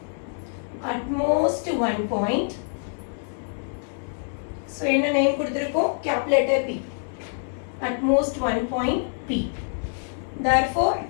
at most one point. So என்ன நேம் கொடுத்திருக்கோம்? Calculator P. at most one point P. Therefore,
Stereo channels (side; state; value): right; silent; 61 dB below the other